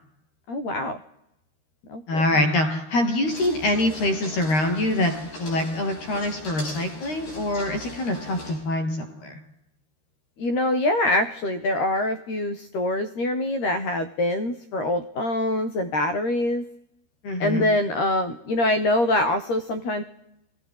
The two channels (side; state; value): right; late; 13 ms